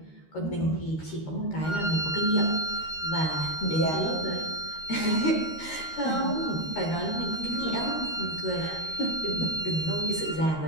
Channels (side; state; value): right; late; 13 ms